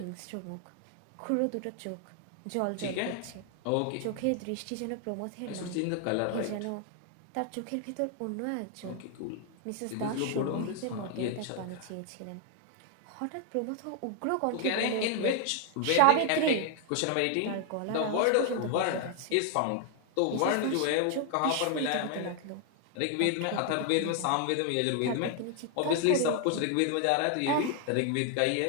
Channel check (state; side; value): different; both; correlation 0.00